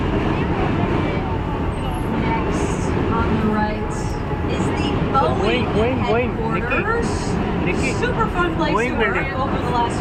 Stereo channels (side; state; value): both; identical; correlation 1.00